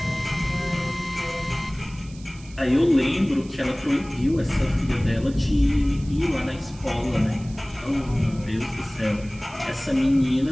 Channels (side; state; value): right; noise; hiss, 22 dB below the sound